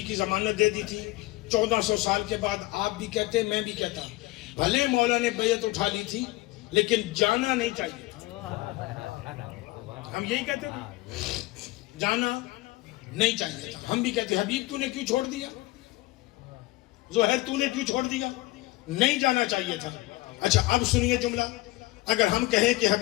کی ضمانت دے دی تھی، 1400 سال کے بعد آپ بھی کہتے میں بھی کہتا ہوں، بھلے مولا نے بیعت اٹھا لی تھی لیکن جانا نہیں چاہیے تھا۔ ہم یہی کہتے تھے، جانا نہیں چاہیے تھا۔ ہم بھی کہتے حبیب تو نے کیوں چھوڑ دیا، زہیر تو نے کیوں چھوڑ دیا، نہیں جانا چاہیے تھا۔ اچھا اب سنیے جملہ، اگر ہم کہیں کہ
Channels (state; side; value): quieter; right; 19.8 dB